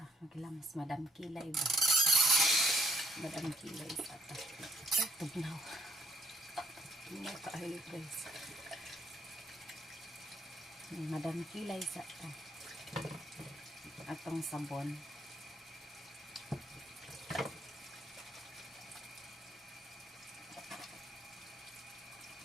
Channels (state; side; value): normal; both; correlation 0.69